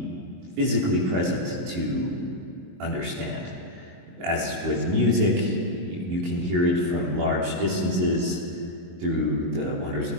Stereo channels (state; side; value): late; left; 22 ms